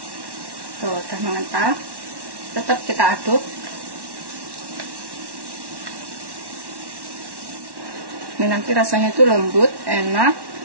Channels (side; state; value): left; late; 1.1 ms